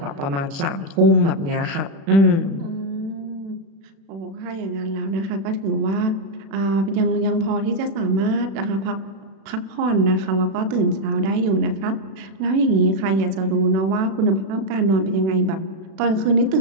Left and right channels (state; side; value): late; left; 36 ms